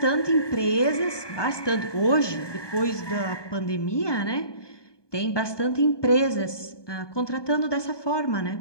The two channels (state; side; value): late; right; 1.2 ms